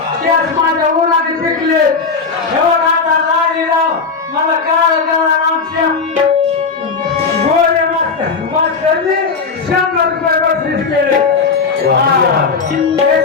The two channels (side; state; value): right; quieter; 4.8 dB